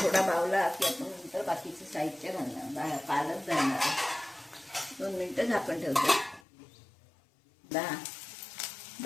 बावला की आपण नंतर बाकीचं साहित्य घालणार, पालक घालणार। 2 मिनिटं झाकण ठेवतो।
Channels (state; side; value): drops out; right; at 6.4 s